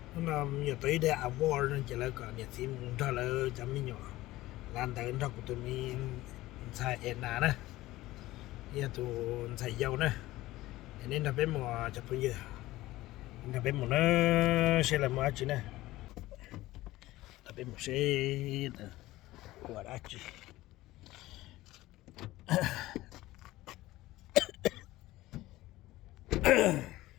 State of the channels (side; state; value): right; quieter; 17.3 dB